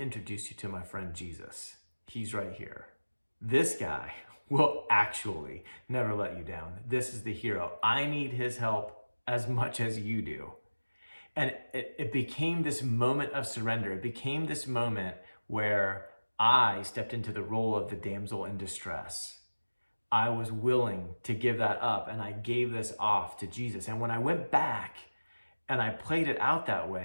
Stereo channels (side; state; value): both; inverted; correlation -1.00